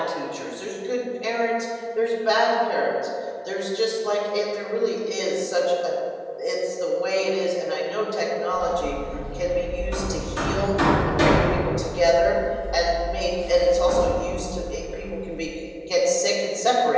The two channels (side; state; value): both; identical; correlation 1.00